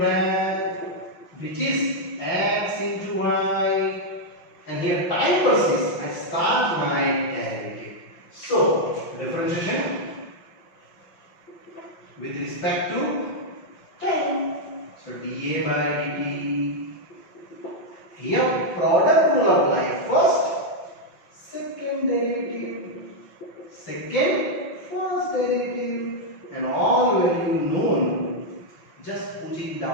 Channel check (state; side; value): late; right; 5.7 ms